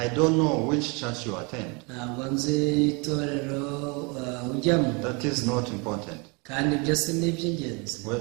don't know which church you attend. ntabwo nzi itorero ujyamo. That is not important. Kandi byose ni iby'ingenzi.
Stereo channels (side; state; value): left; quieter; 30.5 dB